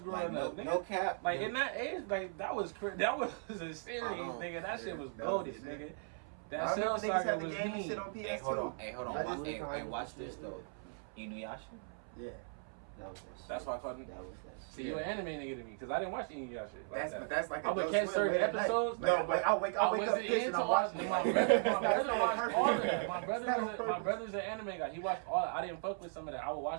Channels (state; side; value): silent; left; 53 dB below the other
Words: like, up. no, Nigga. no cap. Like no, in that age, like that was that was a series, Uh-huh. nigga. That shit was That was goated, the shit. nigga. I That Cell remember niggas Saga had the was game and mean. shit on PS2. Hey, hold on. I Watch, just- hey, watch this though. Inuyasha. Yeah. That was that shit. That's why I called him. That was that shit. See, you an anime nigga to me, because I didn't watch any of y'all shit. Like that. That's like I would catch certain episodes. No, but I wake up wasn't pissed and into I'm all. watching My it. brother watched all of that. That's My brother's an anime guy. He watched all. I didn't fuck with some of that. I would